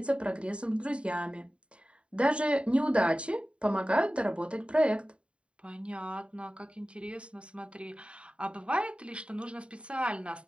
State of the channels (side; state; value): left; late; 0.057 ms